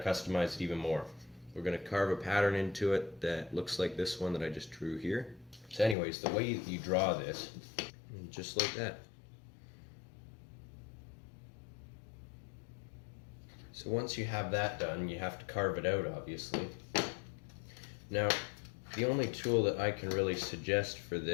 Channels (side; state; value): right; drops out; at 6.0 s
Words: it even more. We're going to carve a pattern into it that looks like this one that I just drew here. So anyways, the way you draw this, just like that. So once you have that done, you have to carve it out, obviously. Now, the only tool that I can really suggest for